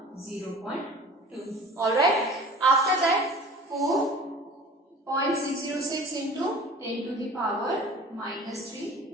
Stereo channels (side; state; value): both; normal; correlation 0.42